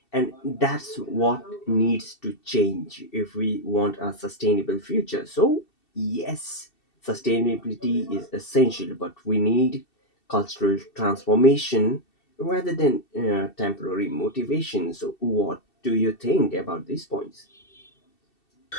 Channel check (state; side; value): late; right; 2.7 ms